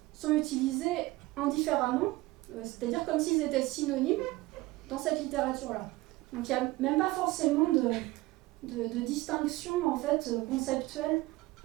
sont utilisés indifféremment, c'est-à-dire comme s'ils étaient synonymes dans cette littérature-là. Donc il n'y a même pas forcément de distinction en fait, conceptuelle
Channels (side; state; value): left; quieter; 19.8 dB